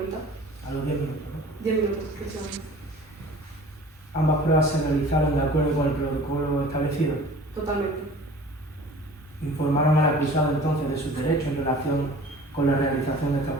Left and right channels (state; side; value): normal; both; correlation 0.45